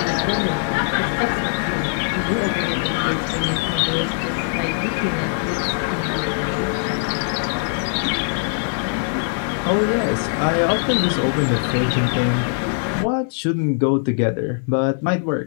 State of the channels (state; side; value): silent; right; 64 dB below the other